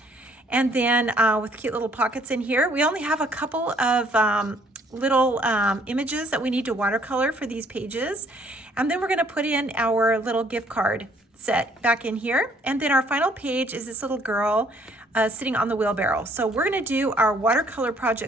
And then with cute little pockets in here. We only have a couple of little images that we need to watercolor for these pages. And then we're gonna put in our little gift card set back in here. And then our final page is this little girl sitting on the wheelbarrow. So we're gonna do our watercolor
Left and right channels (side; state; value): both; normal; correlation 0.63